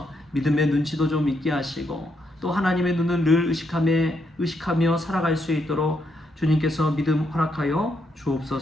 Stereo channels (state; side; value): normal; both; correlation 0.78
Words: 믿음의 눈치도 좀 있게 하시고 또 하나님의 눈을 늘 의식하며 살아갈 수 있도록 주님께서 믿음 허락하여